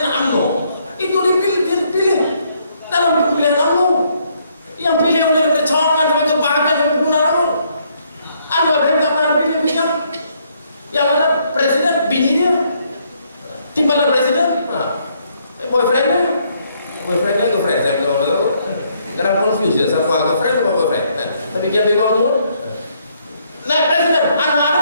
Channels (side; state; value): both; inverted; correlation -0.70